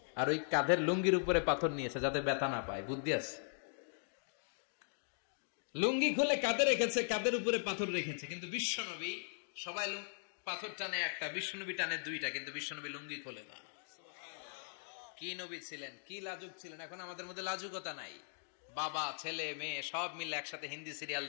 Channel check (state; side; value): silent; right; digital silence